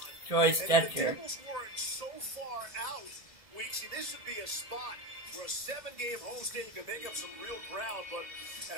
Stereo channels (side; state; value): left; late; 1.7 ms